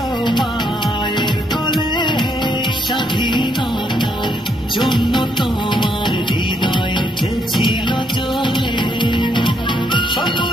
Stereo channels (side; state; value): both; normal; correlation 0.73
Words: মায়ের কোলে স্বাধীনতার জন্য তোমার হৃদয় উঠেছিল চলে